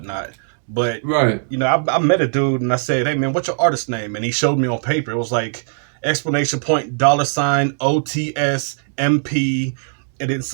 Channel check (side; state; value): left; silent; digital silence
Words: But, you know, I met a dude and I said, hey, man, what's your artist name? And he showed me on paper. It was like $! OTS MP, and then